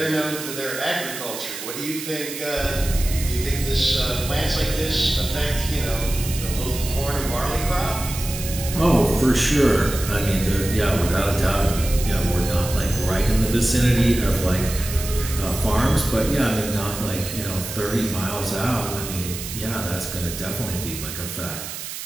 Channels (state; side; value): noise; right; hiss, 8 dB below the sound